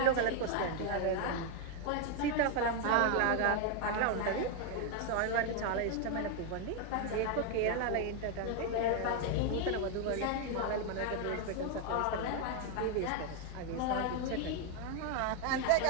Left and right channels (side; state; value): both; different; correlation 0.01